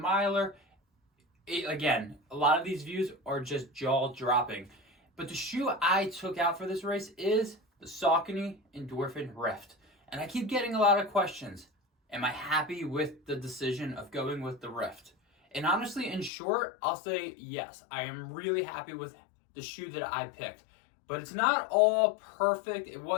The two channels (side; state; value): right; drops out; at 16.3 s